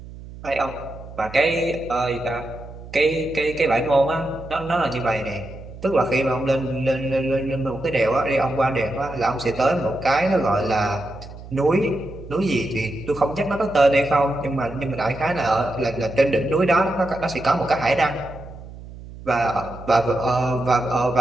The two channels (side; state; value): right; noise; hum, 15 dB below the sound